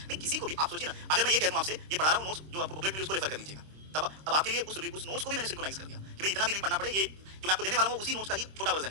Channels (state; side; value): late; left; 26 ms